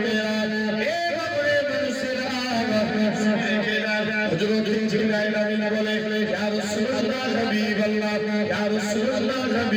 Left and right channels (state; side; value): identical; both; correlation 1.00